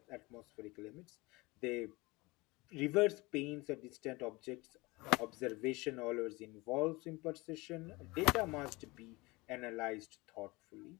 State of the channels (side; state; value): right; quieter; 23.4 dB